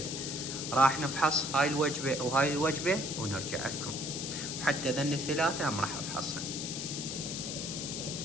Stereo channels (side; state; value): left; noise; hiss, 5 dB below the sound